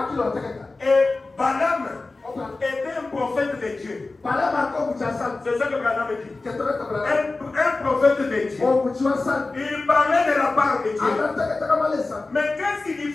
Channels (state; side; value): quieter; right; 3.4 dB